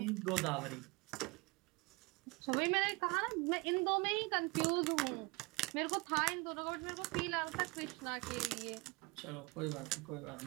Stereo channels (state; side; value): quieter; left; 25.7 dB